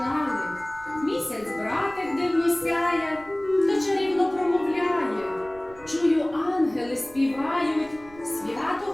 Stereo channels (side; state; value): right; noise; rumble, 23 dB below the sound